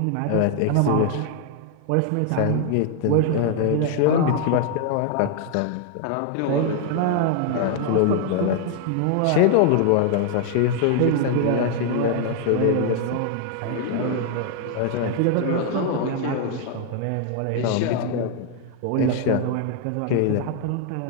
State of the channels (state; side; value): different; both; correlation 0.00